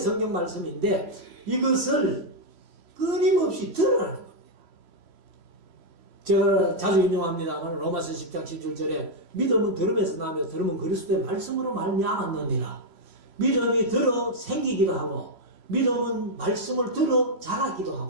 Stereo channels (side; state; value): left; late; 3.0 ms